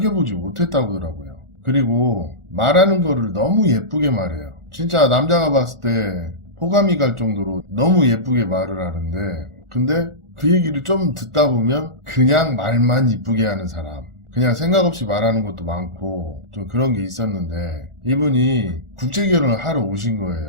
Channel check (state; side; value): late; left; 1.4 ms